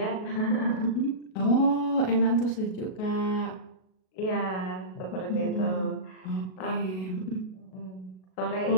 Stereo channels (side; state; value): right; late; 38 ms